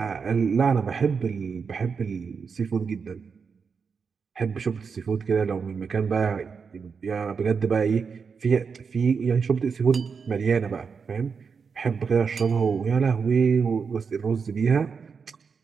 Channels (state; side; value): quieter; left; 5.7 dB